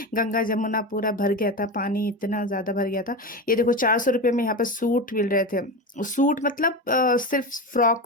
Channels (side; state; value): both; normal; correlation 0.22